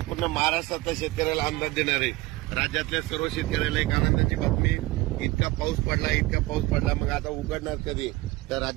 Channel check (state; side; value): quieter; left; 19.7 dB